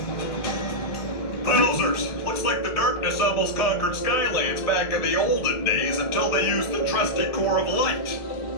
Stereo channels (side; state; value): right; late; 1.5 ms